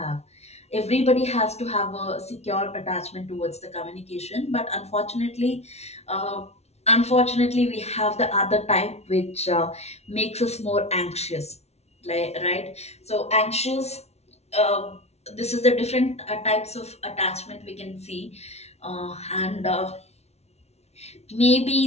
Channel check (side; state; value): right; late; 0.31 ms